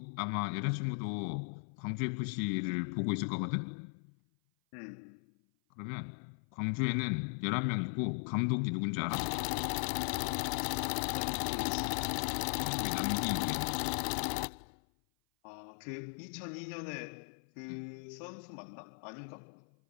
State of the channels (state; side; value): silent; right; 53 dB below the other